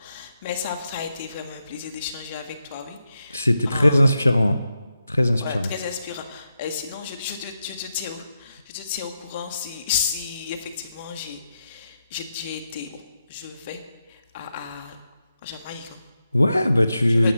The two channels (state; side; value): inverted; both; correlation -0.86